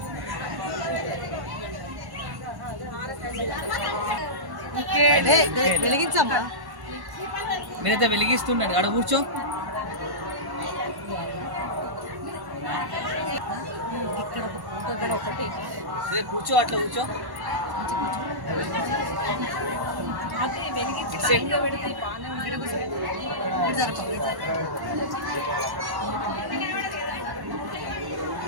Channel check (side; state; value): left; late; 1.1 ms